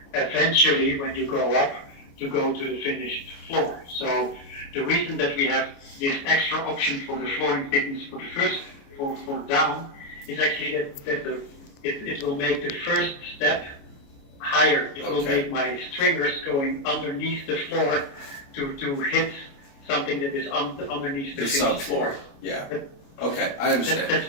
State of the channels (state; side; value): late; right; 28 ms